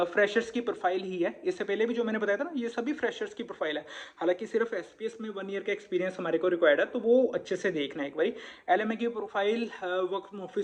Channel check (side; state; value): both; identical; correlation 1.00